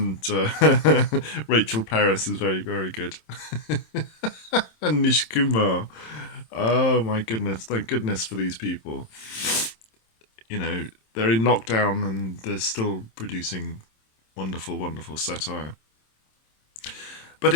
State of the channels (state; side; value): late; right; 27 ms